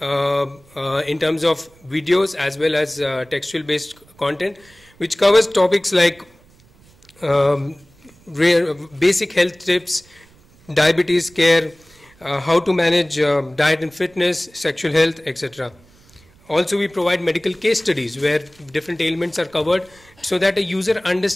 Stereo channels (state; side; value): noise; right; rumble, 29 dB below the sound